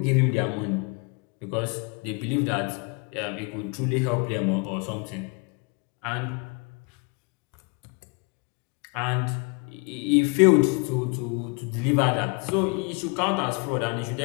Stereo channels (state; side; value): quieter; right; 31.5 dB